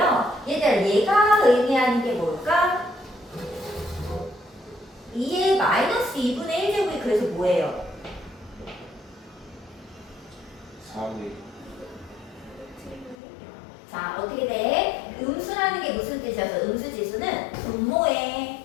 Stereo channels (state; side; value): drops out; right; at 13.2 s